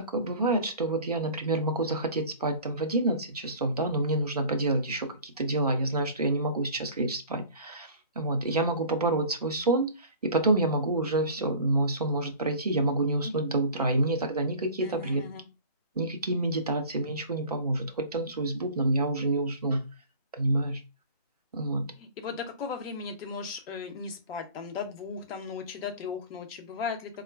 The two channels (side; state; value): both; inverted; correlation -0.42